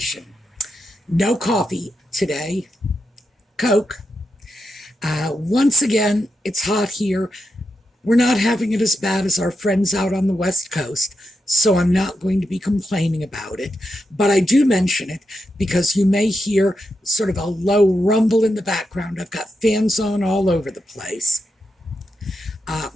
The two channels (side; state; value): both; normal; correlation 0.86